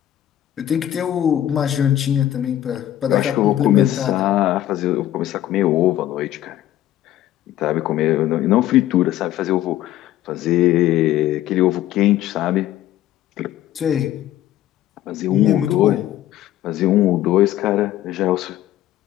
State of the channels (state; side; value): quieter; right; 12.9 dB